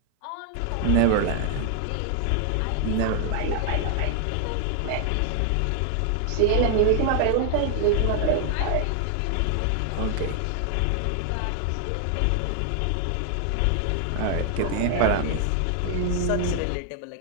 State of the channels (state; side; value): different; both; correlation 0.00